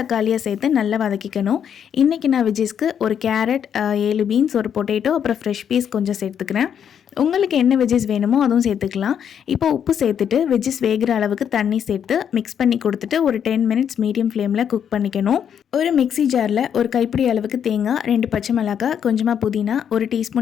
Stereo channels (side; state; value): right; quieter; 8.4 dB